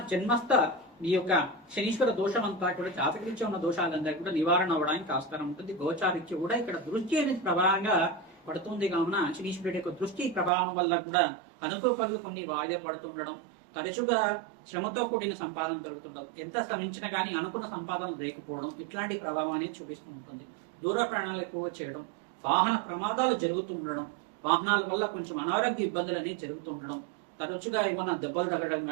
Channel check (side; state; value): left; drops out; at 10.5 s